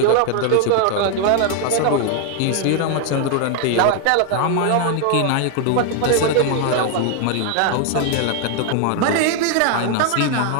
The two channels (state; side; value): different; both; correlation 0.00